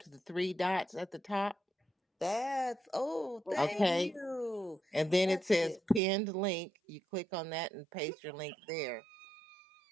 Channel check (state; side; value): drops out; left; at 6.0 s